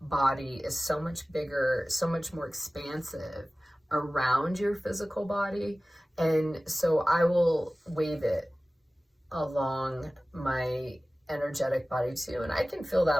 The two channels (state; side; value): normal; both; correlation 0.97